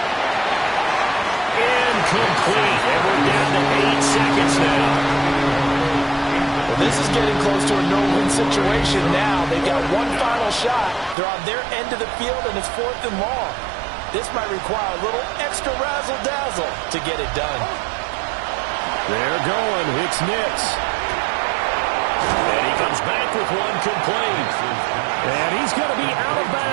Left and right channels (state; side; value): drops out; left; at 11.2 s